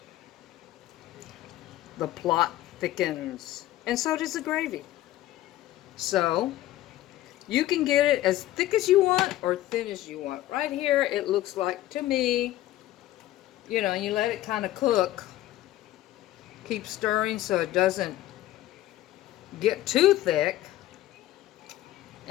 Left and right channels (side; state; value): right; quieter; 14.7 dB